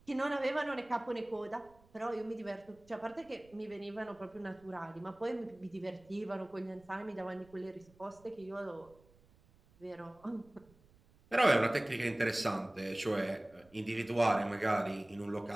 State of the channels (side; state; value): right; noise; rumble, 28 dB below the sound